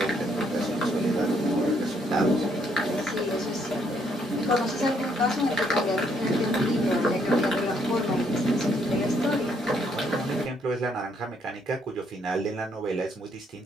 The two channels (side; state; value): both; normal; correlation 0.70